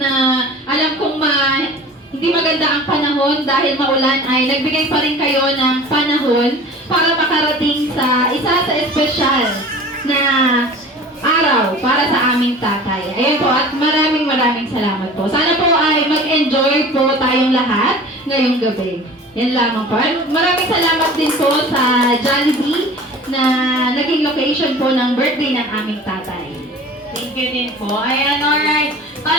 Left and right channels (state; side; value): normal; both; correlation 0.41